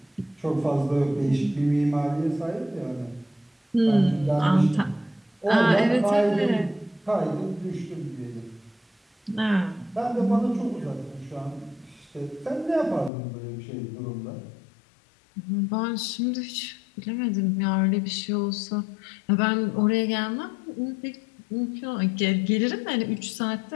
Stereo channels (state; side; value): drops out; right; at 13.1 s